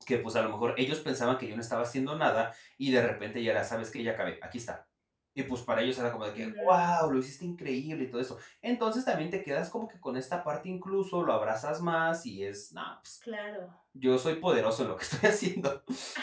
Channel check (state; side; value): identical; both; correlation 1.00